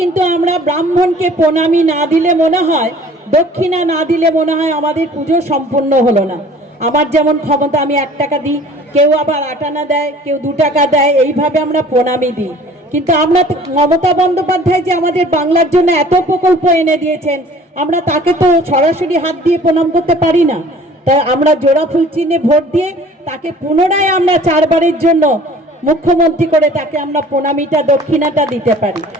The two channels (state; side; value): normal; both; correlation 0.50